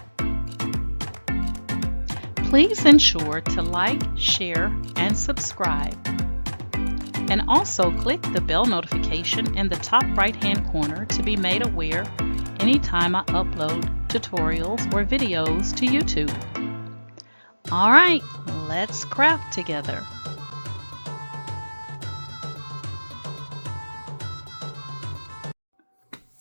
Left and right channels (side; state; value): both; inverted; correlation -1.00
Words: Please ensure to like, share, and subscribe. And also click the bell notification in the top right-hand corner to be made aware anytime I upload tutorials or videos to YouTube. All right, let's craft together.